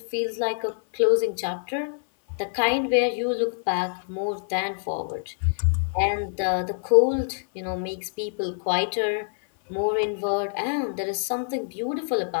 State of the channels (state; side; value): silent; right; 57 dB below the other